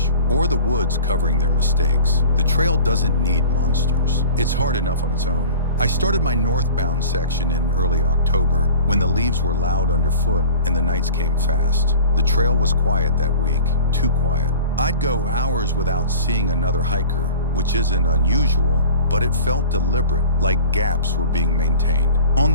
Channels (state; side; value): inverted; both; correlation -0.41